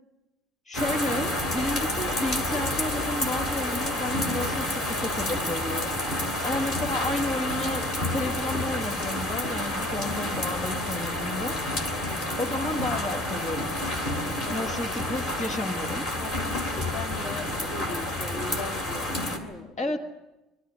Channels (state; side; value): normal; both; correlation 0.51